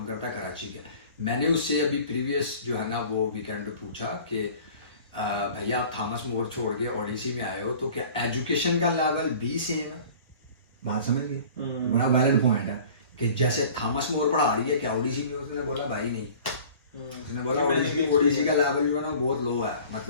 करता है, कराची का। मैंने उससे अभी प्रीवियस जो है ना वो वीकेंड पे पूछा कि भैया आप थॉमस मोर छोड़ के ओडिसी में आए हो तो क्या एजुकेशन का लेवल भी सेम है? बात समझ गए? बड़ा वैलिड पॉइंट है कि जैसे थॉमस मोर पढ़ा रही है क्या ओडिसी में? उसने बोला भाई नहीं, उसने बोला ओडिसी का लेवल जो है ना बहुत लो है,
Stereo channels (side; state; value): both; inverted; correlation -0.46